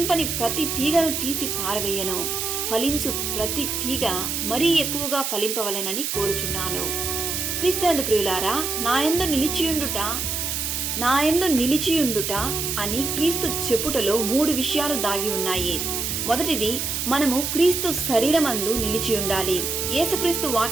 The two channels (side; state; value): right; noise; hiss, 2 dB below the sound